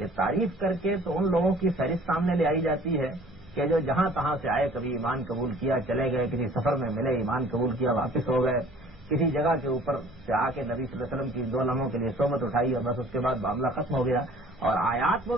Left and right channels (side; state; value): right; noise; rumble, 26 dB below the sound